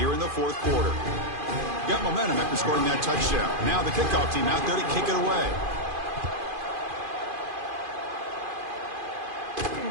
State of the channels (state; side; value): late; left; 2.5 ms